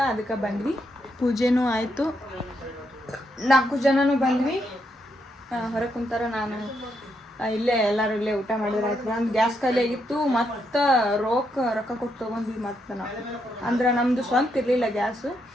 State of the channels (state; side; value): normal; both; correlation 0.79